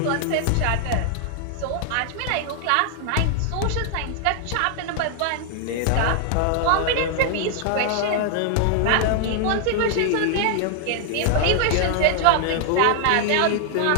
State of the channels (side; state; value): both; different; correlation 0.00